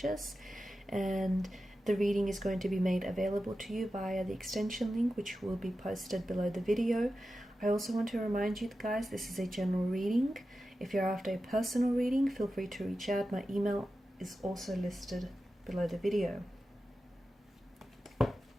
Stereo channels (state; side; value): normal; both; correlation 0.92